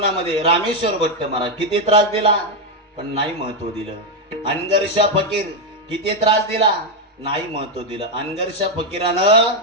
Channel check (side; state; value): both; normal; correlation 0.03